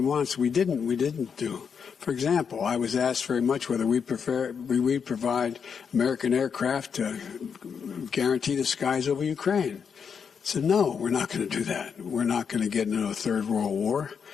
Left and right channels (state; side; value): quieter; right; 6.6 dB